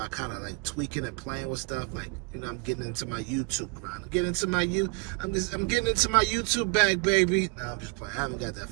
kind of like tweaking and playing with stuff. Like, you know, I'm getting into my YouTube grind. I'm getting into my YouTube bag, baby. No, I'm just playing. I haven't got that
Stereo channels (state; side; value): quieter; left; 31.5 dB